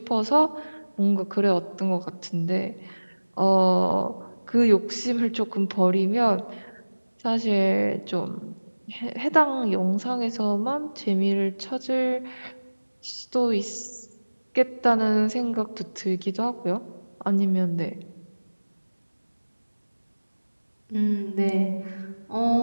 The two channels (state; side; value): inverted; both; correlation -1.00